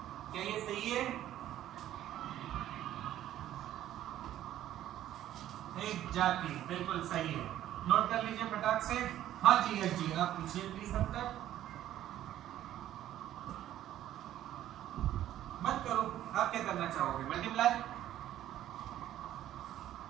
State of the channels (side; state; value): left; quieter; 12.5 dB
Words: क्या ये सही है? एग्जैक्टली, बिल्कुल सही है। नोट कर लीजिए फटाक से। हाँ जी, यस जी, आप पूछिए प्लीज। तब तक मत करो, आप क्या करना चाहोगे? मल्टीप्लाई।